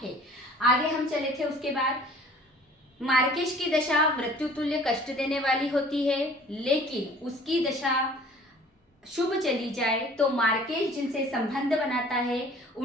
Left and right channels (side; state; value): both; normal; correlation 0.50